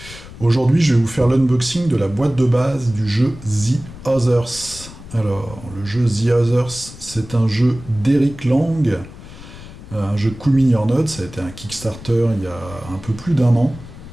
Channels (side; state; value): left; noise; rumble, 16 dB below the sound